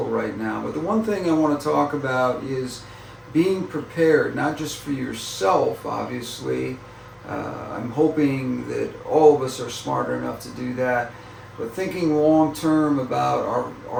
right now. But the one thing I want to talk about is being prepared, not just for yourself, obviously. I'm hoping that all of us are smart enough to do that, but thinking long term about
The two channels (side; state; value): both; identical; correlation 1.00